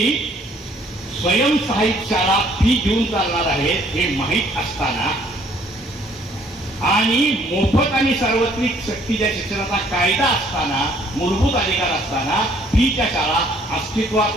स्वयंसहाय्यित शाळा फी घेऊन चालणार आहेत हे माहीत असताना आणि मोफत आणि सार्वत्रिक सक्तीच्या शिक्षणाचा कायदा असताना, मूलभूत अधिकार असताना फीच्या शाळा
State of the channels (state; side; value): normal; both; correlation 0.62